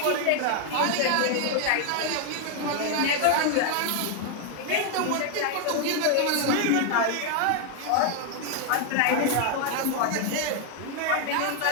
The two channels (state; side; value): different; both; correlation 0.00